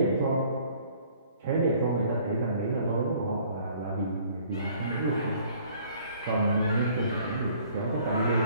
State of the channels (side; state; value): both; inverted; correlation -0.57